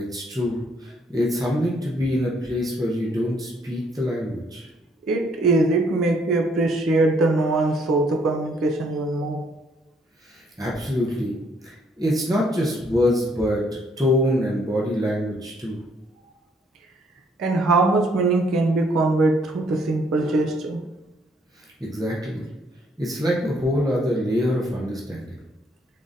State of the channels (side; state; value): both; normal; correlation 0.67